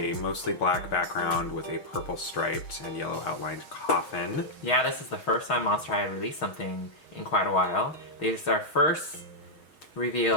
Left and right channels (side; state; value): right; late; 6.3 ms